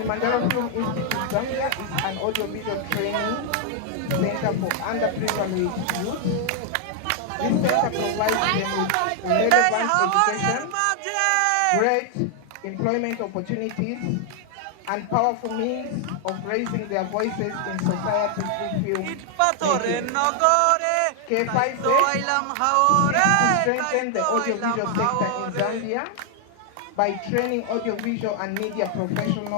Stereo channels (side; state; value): both; different; correlation 0.00